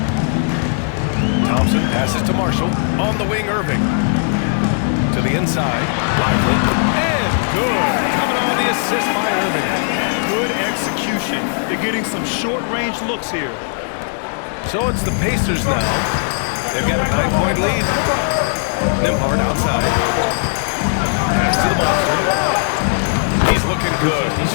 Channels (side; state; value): right; silent; 61 dB below the other